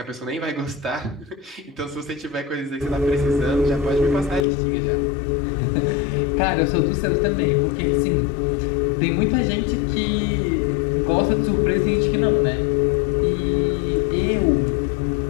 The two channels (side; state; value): right; drops out; at 4.5 s